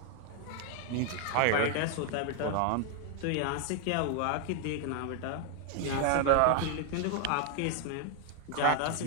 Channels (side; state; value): both; different; correlation 0.00